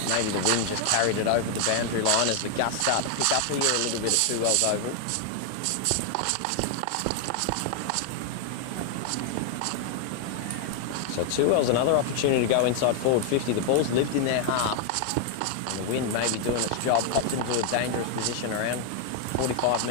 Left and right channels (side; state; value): both; different; correlation 0.00